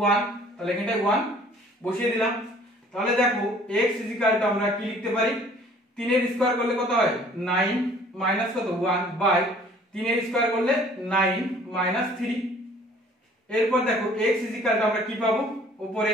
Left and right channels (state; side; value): normal; both; correlation 0.54